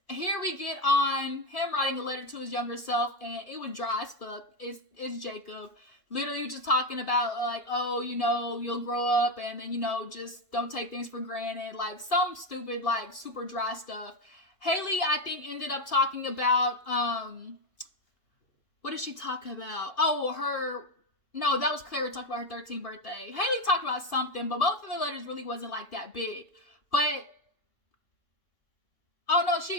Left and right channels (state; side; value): late; right; 2.7 ms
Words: here we get on him writing a letter to his younger self, and it was dry as fuck. It's Jacob. Literally just talking about, like, oh, you'll grow up and then, just don't take things for granted. Like, some stupid, like, super dry stuff. Haley, I think, ended up talking about, what did she talk about? Oh, no, that was Clara talking about her 13th birthday. Haley talked about something, but both of the letters really wasn't, like, that big. But, oh, no,